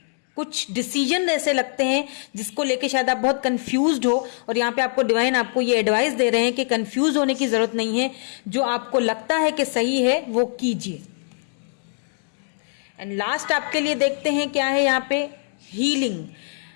कुछ डिसीजन ऐसे लगते हैं जिसको लेके शायद आप बहुत कंफ्यूज्ड हो, और यहाँ पे आपको डिवाइन आपको ये एडवाइस दे रहे हैं कि कंफ्यूज होने की जरूरत नहीं है, जो आपको लगता है कि सही है वो कीजिए। एंड लास्ट आपके लिए देखते हैं क्या है यहाँ पे, healing.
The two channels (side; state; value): right; silent; digital silence